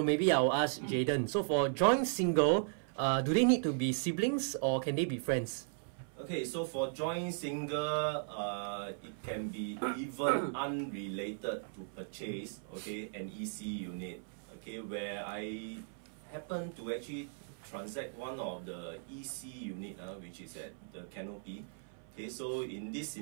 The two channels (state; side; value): silent; left; 53 dB below the other